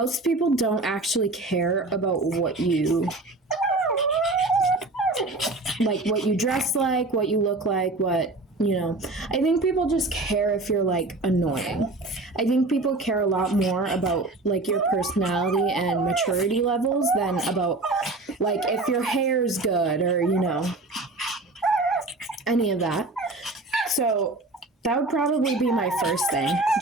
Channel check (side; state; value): left; quieter; 3.1 dB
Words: people don't actually care about what you dress like, what you look like, what, you know. I think people just care if you're, like, annoying. I think people care a lot more about, like, your personality and maturity levels than about, like, if your hair's good or, you know, any of that. So that would probably be my first thing.